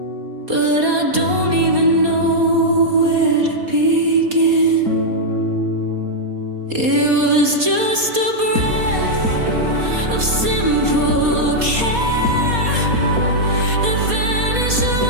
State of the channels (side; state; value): left; late; 4.2 ms